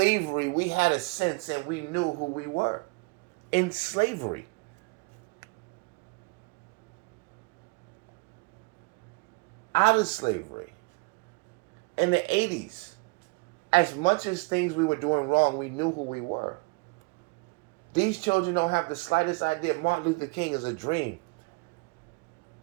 we had a sense and we knew who we were. In slavery. Out of slavery. In the 80s, as much as things we were doing wrong, we knew who we were. These children don't have the slightest idea. Martin Luther King is a dream.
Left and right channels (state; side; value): quieter; left; 29.0 dB